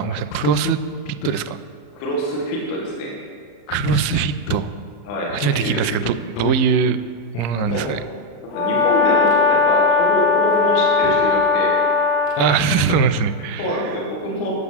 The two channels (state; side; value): late; right; 34 ms